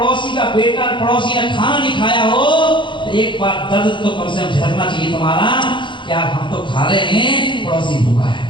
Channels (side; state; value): right; late; 0.23 ms